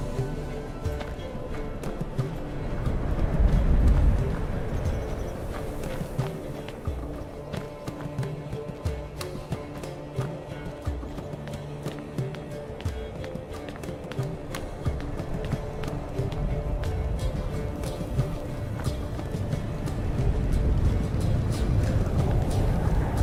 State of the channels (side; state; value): both; identical; correlation 1.00